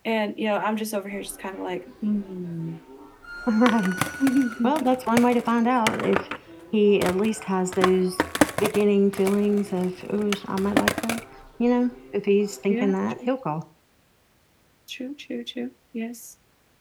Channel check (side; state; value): both; identical; correlation 1.00